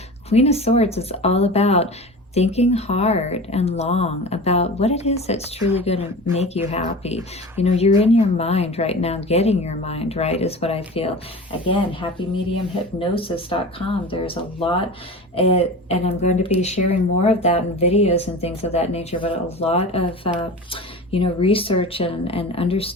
Queen of Swords is all about thinking hard and long about what it is that's truly going to make you happy. You know, you're in your mind right now, getting your mind right is what I feel. Again, happymediumhypnosis.com. There's a lot, and I'm going to be sharing more of that in videos and things of that nature, but a lot of, you know, research and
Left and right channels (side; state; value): both; normal; correlation 0.33